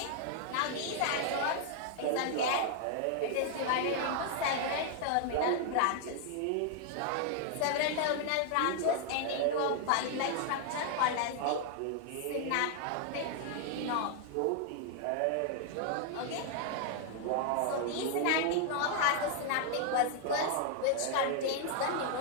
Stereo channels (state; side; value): different; both; correlation 0.00